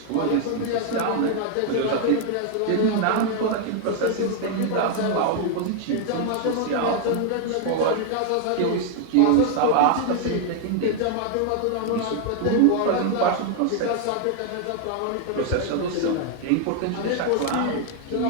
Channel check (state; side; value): different; both; correlation 0.00